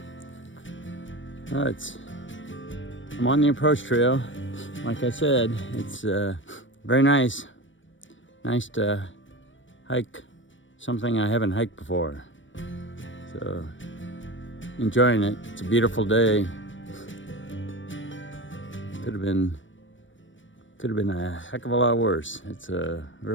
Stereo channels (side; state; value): right; late; 0.56 ms